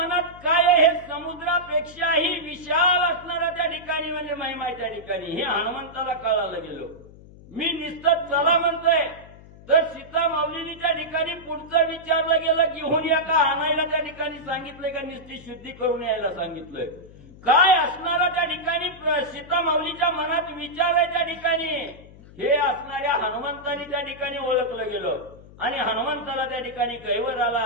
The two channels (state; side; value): noise; left; hum, 20 dB below the sound